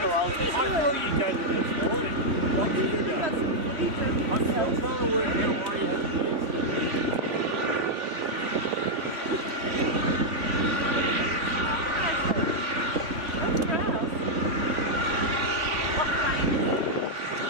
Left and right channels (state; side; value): late; left; 3.4 ms